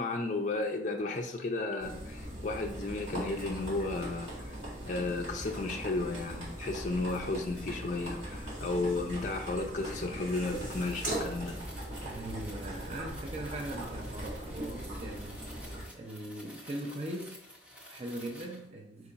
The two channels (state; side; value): normal; both; correlation 0.51